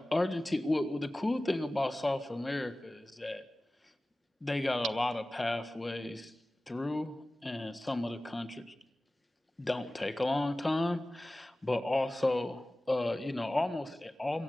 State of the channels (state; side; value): normal; both; correlation 0.97